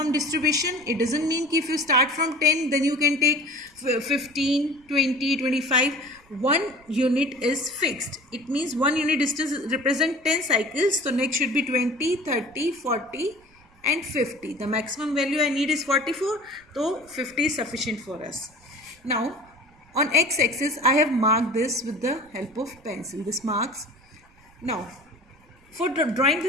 distribution. It doesn't mean if you start from 10, then you can take 15, 20, 25. One unit is fixed. It means one unit distance represents 10 cycles. So next should be 20, 30, 40 and 50. The maximum value I need is 44. So 50 is sufficient for us. Now on x-axis, I have marked this with the help of pencil. This marks. Now for drawing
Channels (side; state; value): right; noise; rumble, 29 dB below the sound